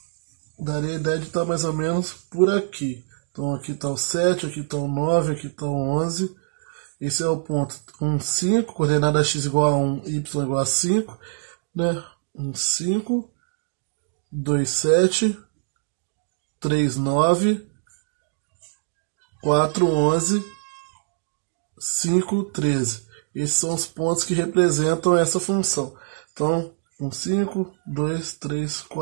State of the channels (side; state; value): left; silent; digital silence